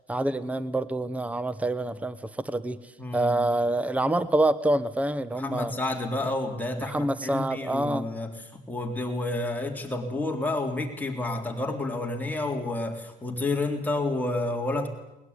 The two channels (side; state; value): both; normal; correlation 0.79